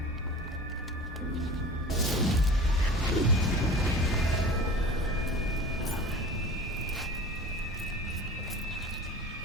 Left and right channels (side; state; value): both; normal; correlation 0.38